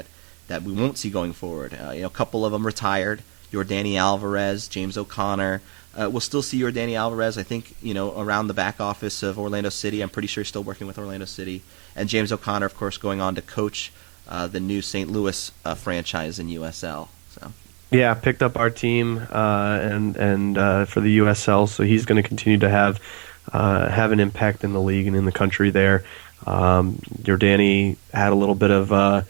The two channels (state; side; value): quieter; left; 34.7 dB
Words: we won't see going forward. A couple of them retired. Yordany Alvarez, James O'Connor. We'll still see Yordany Alvarez, I think, around the back office of Orlando City. I'm pretty sure he's still working with Orlando City. And James O'Connor, of course, going on to coach the new St. Louis franchise in USL. So. Yeah, picked up our team and for the USL, so he's going to continue to have an impact in the league and in the country there. Yordany had a little bit of